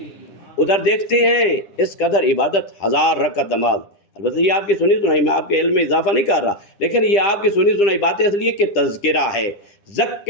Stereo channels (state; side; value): late; right; 9.9 ms